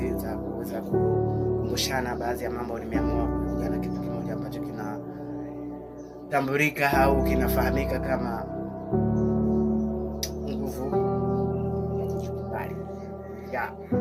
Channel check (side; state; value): both; identical; correlation 1.00